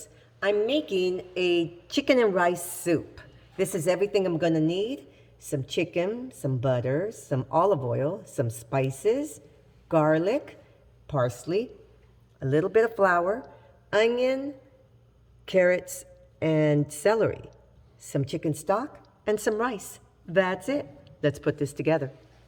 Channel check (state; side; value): identical; both; correlation 1.00